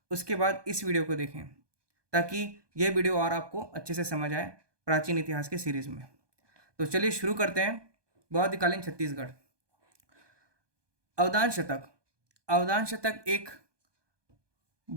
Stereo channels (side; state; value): left; late; 1.2 ms